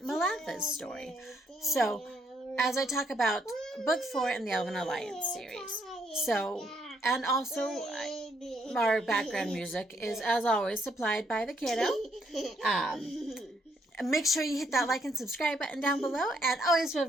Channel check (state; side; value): normal; both; correlation 0.72